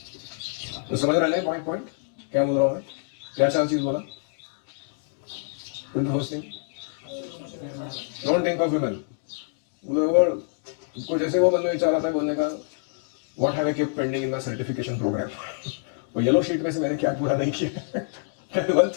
तो समझ रहे हैं पॉइंट क्या बोल रहा हूँ मैं, क्या 4 चीज बोला? डोंट थिंक ऑफ विमेन, उसको जैसे वो मन में विचार आता है बोलने का, what have I keep pending in my certification program, वो येलो शीट में से मैंने क्या पूरा नहीं किया one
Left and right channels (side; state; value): right; silent; 61 dB below the other